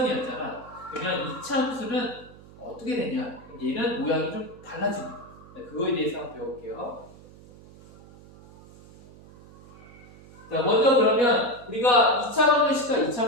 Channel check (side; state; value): right; noise; hum, 21 dB below the sound